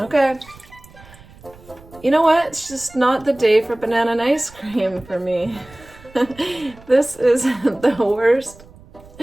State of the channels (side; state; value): right; noise; rumble, 23 dB below the sound